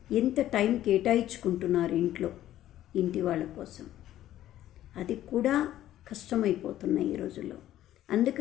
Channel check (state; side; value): quieter; right; 13.1 dB